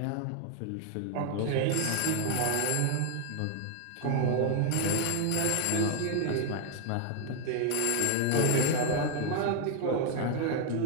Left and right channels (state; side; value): different; both; correlation 0.01